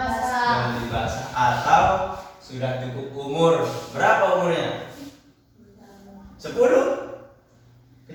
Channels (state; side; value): identical; both; correlation 1.00